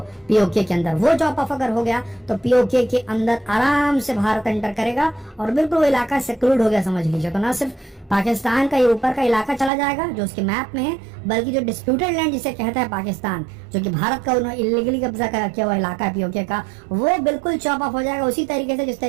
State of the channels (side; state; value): left; drops out; at 9.7 s